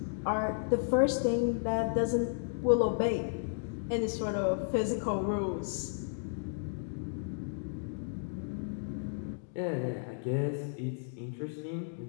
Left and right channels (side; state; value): right; silent; digital silence